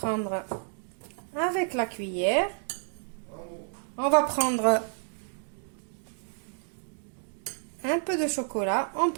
avec la cuillère. On va prendre un peu de chocolat. On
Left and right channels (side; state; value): left; silent; 58 dB below the other